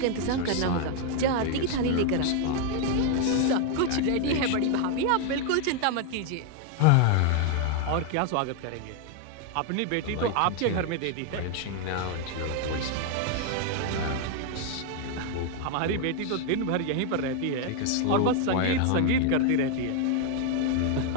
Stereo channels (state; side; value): different; both; correlation 0.00